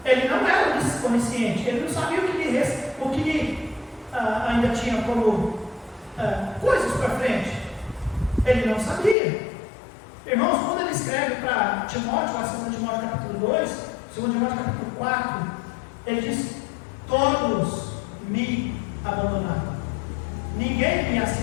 Ele não era onisciente, ele não sabia o que lhe ainda tinha como coisas para frente. Ele não sabia. Irmãos, quando ele escreve para Timóteo, lá em 2 Timóteo capítulo 2, 2 Timóteo capítulo 4, ele diz: todos me abandonaram, ninguém me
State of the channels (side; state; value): right; drops out; at 9.2 s